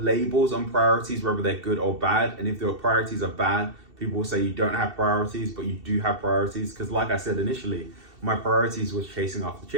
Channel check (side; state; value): left; late; 2.7 ms